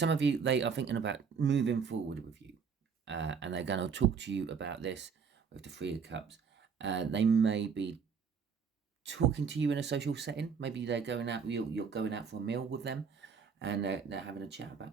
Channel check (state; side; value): quieter; left; 6.2 dB